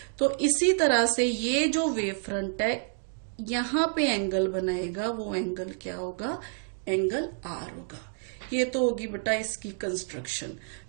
तो इसी तरह से ये जो वेव फ्रंट है यहां पे एंगल बनाएगा, वो एंगल क्या होगा, एंगल आर होगा। ये तो होगी बेटा इसकी कंस्ट्रक्शन।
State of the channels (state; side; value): silent; left; 59 dB below the other